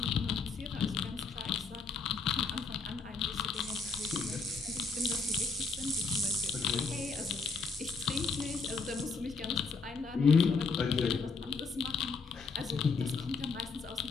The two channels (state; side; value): quieter; right; 4.6 dB